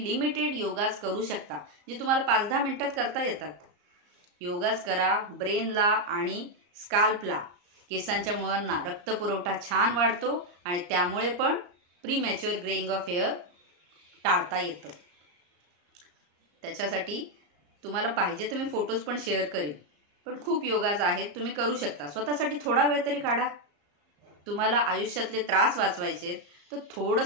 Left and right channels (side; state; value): left; late; 34 ms